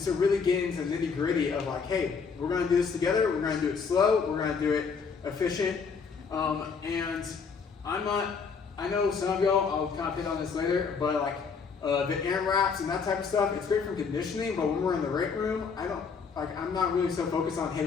so really getting into the nitty gritty of like, hey, we're going to do this together, we're going to do it slow, we're going to do it efficient. And I know some of y'all, I'll kind of hit on this later, but like the AMRAPs and that type of stuff, it's great for conditioning, but when we're in the weight room, I'm not really so focused on, hey,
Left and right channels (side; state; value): right; quieter; 5.5 dB